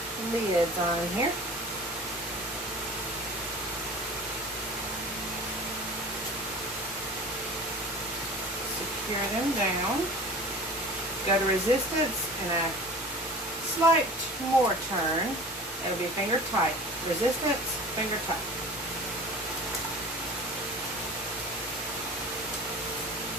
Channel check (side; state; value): both; normal; correlation 0.39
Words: lids on here. Secure them down. Go to resistance and a slight more turn. It'll be finger tight. Resistance, finger tight.